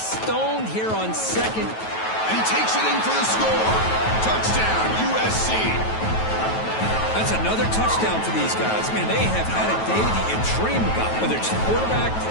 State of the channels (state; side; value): late; right; 9.2 ms